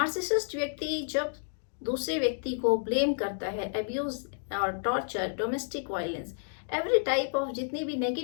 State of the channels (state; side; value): silent; right; digital silence